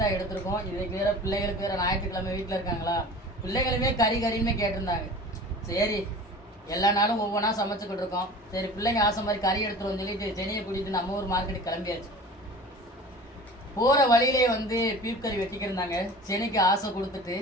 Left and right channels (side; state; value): both; normal; correlation 0.39